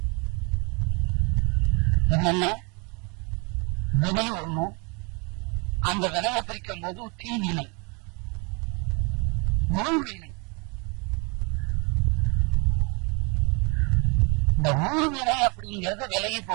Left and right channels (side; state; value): left; quieter; 31.6 dB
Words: என்னென்ன? வினை ஒண்ணு. அந்த வினையை பிரிக்கும் போது தீவினை, உள்வினை. இந்த ஊழ்வினை அப்படிங்கிறது விலகி